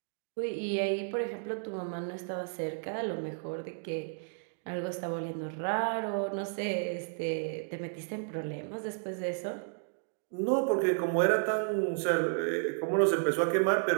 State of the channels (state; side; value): silent; left; digital silence